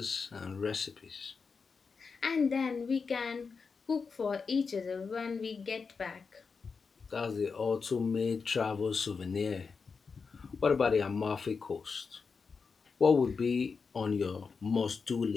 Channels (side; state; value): right; quieter; 5.1 dB